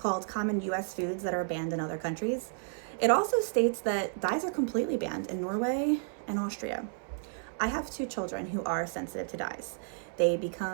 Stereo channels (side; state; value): left; silent; 57 dB below the other